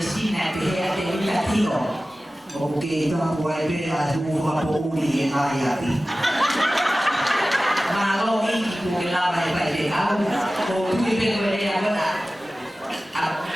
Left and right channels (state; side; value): normal; both; correlation 0.96